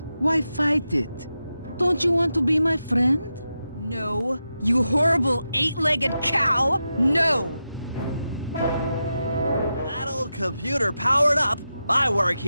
Why fight it? Don't you want to be my friend? No, you horrible eight-legged cow! No! That old computer powered up. My work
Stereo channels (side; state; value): both; inverted; correlation -0.89